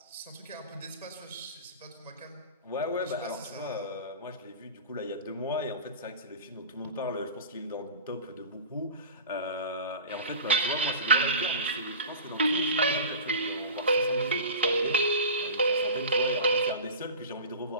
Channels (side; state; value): both; inverted; correlation -0.34